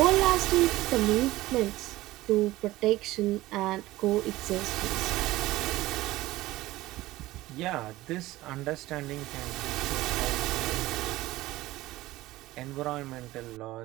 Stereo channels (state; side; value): quieter; left; 17.5 dB